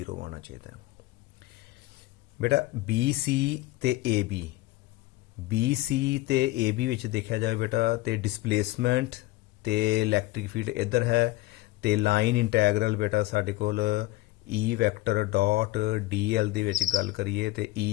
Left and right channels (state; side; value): quieter; right; 18.7 dB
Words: ਆਉਣਾ ਚਾਹੀਦਾ ਹੈ। ਬੇਟਾ BC ਤੇ AB ਵਿੱਚ ਦੇਖਿਆ ਜਾਵੇ ਬੇਟਾ ਤੇ ਡਿਸਪਲੇਸਮੈਂਟ ਤੇ ਇਲੈਕਟ੍ਰਿਕ ਫੀਲਡ ਇੱਧਰ ਹੈ, ਤੇ ਲਾਈਨ ਇੰਟੈਗਰਲ ਬੇਟਾ ਸਾਡੇ ਕੋਲ E ਵੈਕਟਰ ਡਾਟ DL ਦੇ ਵਿੱਚ ਗੱਲ ਕਰੀਏ ਤੇ